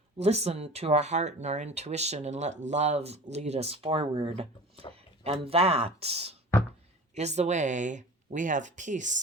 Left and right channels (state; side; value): normal; both; correlation 0.38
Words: listen to our heart and our intuition and let love lead us forward. And that is the way we have